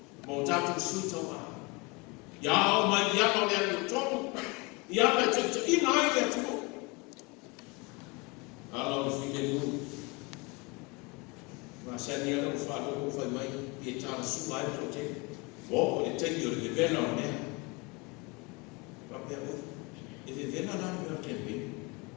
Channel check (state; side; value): quieter; right; 27.7 dB